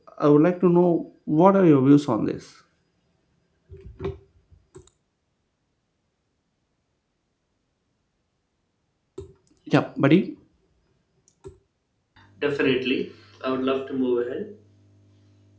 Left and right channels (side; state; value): both; identical; correlation 1.00